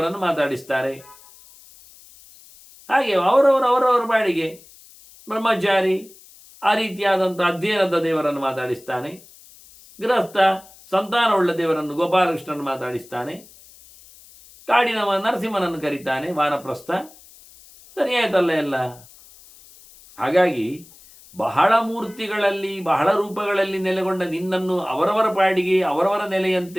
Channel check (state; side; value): noise; left; hiss, 23 dB below the sound